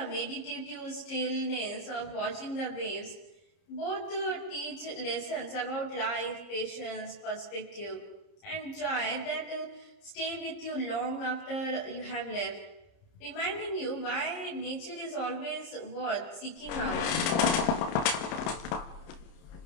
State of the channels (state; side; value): late; right; 30 ms